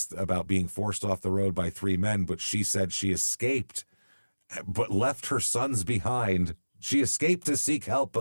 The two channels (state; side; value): inverted; both; correlation -1.00